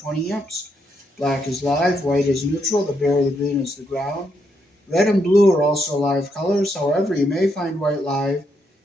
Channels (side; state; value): both; normal; correlation 0.78